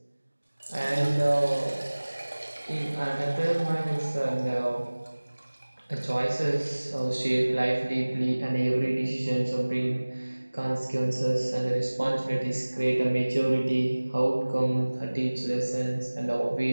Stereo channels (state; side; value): inverted; both; correlation -1.00